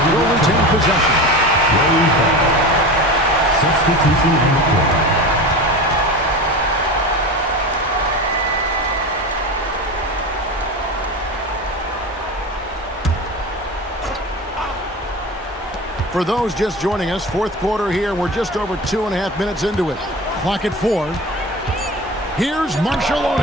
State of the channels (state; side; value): normal; both; correlation 0.30